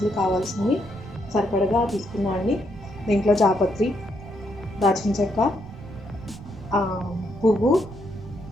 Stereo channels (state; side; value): noise; right; rumble, 18 dB below the sound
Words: కావాల్సినవి సరిపడగా తీసుకున్నాను. దీంట్లో జాపత్రి, దాల్చిన చెక్క, పువ్వు,